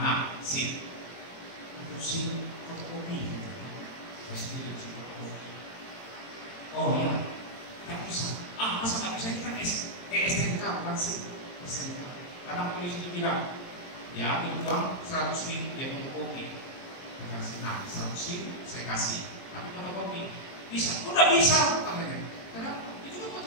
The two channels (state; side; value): late; right; 22 ms